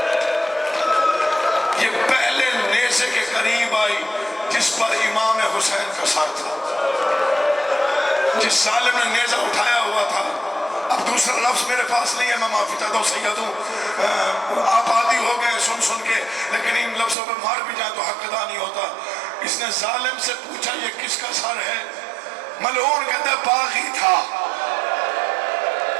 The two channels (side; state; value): left; drops out; at 17.2 s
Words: یہ پہلے نیزے کے قریب آئی جس پر امام حسین کا سر تھا جس ظالم نے نیزہ اٹھایا ہوا تھا. اب دوسرا لفظ میرے پاس نہیں ہے میں معافی چاہتا ہوں سیدوں آپ عادی ہو گئے سن کے لیکن ان لفظوں پہ مار بھی جائیں تو حق ادا نہیں ہوتا. اس نے ظالم سے پوچھا یہ کس کا سر ہے. ملعون کہتا ہے باغی تھا.